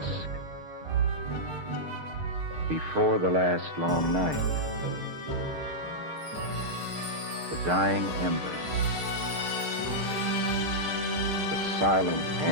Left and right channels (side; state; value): left; late; 6.6 ms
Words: before the last long night? The dying embers, the silent